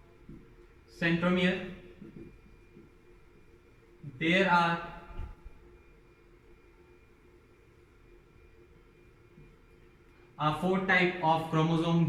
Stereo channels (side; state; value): both; identical; correlation 1.00